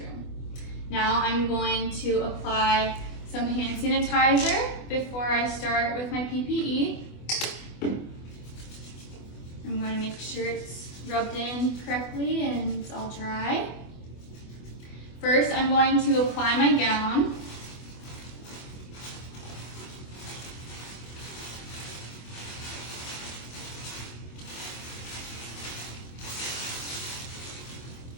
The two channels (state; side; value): late; right; 24 ms